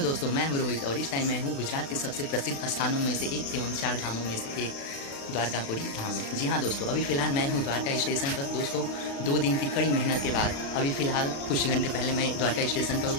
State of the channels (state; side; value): late; right; 36 ms